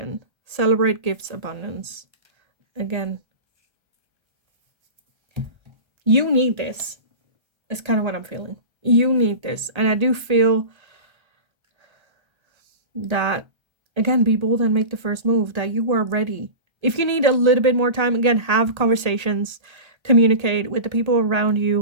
Celebrate gifts, abundance. Again, you need this. It's kind of what I'm feeling. You need this. And I do feel that, again, be bold and make the first move, that you are ready. If you need a little bit more time, again, have conversations, communicate with the people around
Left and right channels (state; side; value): late; left; 1.3 ms